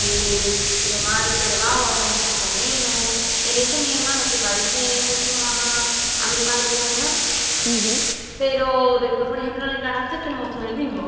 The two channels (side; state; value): both; identical; correlation 1.00